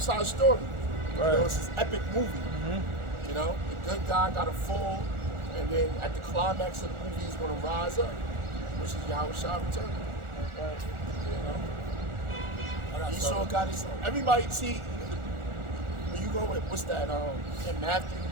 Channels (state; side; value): late; left; 1.4 ms